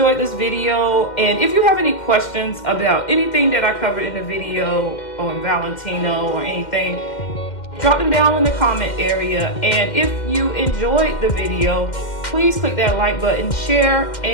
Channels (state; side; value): late; right; 2.1 ms